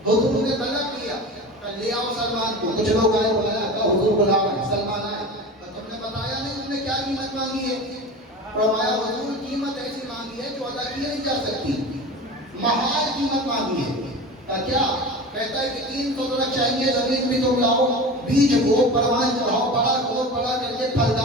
حضور نے طلب کیا لے آؤ سلمان کو. کچھ لوگ آئے، بلایا، کہا حضور بلا رہے ہیں. سلمان آئے. تم نے بتایا نہیں تم نے کیا قیمت مانگی ہے. فرمایا حضور قیمت ایسی مانگی ہے جو ادا کی نہیں جا سکتی، محال قیمت مانگی ہے. کہا کیا؟ کہتا ہے کہ 300 درخت چاہیے، زمین بھی تم لاؤ، بیج کو پروان چڑھاؤ، بڑا کرو، بڑا کر کے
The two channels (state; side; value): normal; both; correlation 0.32